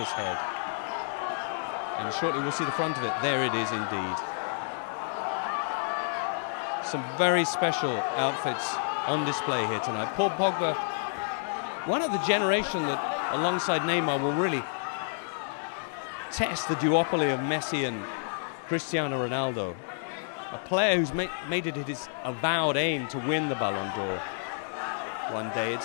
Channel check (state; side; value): silent; right; digital silence